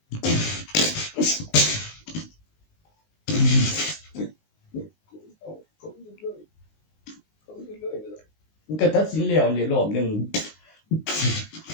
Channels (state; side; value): late; right; 19 ms